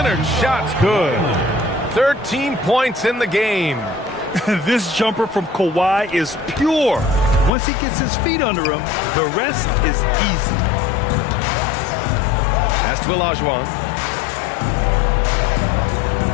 shot's good. 13 points in the game. This jumper from Kawhi is pure. Once he gets his feet under him, the rest is easy. Pass to Olajuwon.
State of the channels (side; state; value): right; drops out; at 7.5 s